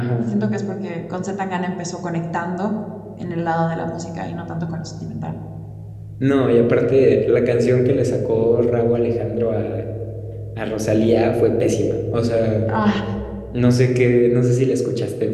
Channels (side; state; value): both; identical; correlation 1.00